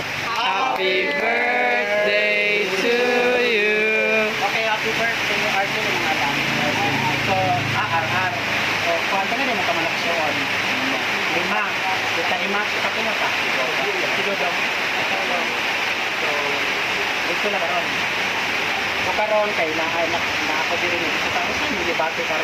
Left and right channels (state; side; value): identical; both; correlation 1.00